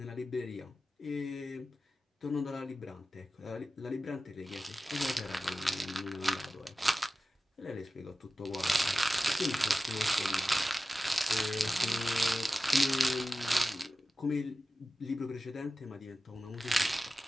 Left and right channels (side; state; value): both; normal; correlation 0.94